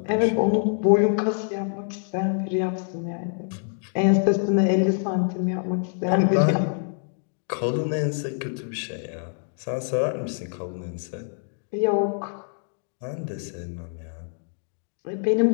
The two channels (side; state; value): right; silent; digital silence